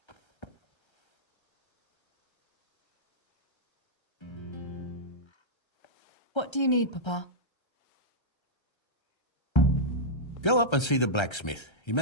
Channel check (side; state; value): right; late; 1.3 ms